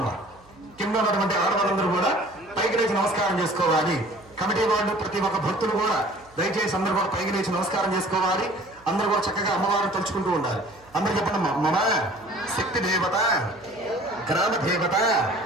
కింద ఉన్నటువంటి ఆడవాళ్ళందరూ కూడా పైకి లేచి నమస్కారం చేసుకోవాలి. కమిటీ వాళ్ళు ప్రతి ఒక్క భక్తులు కూడా దయచేసి అందరూ కూడా పైకి లేచి నమస్కారం చేసుకోవాలి. అందరూ కూడా చక్కగా అమ్మవారిని తలుచుకుంటూ ఉండాలి. అందరూ చెప్పండి. మమ శక్తి దేవత గ్రామ దేవత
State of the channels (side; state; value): right; noise; hum, 28 dB below the sound